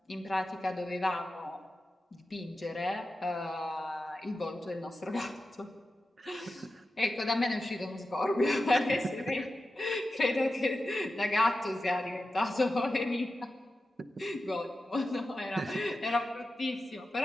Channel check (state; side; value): normal; both; correlation 0.92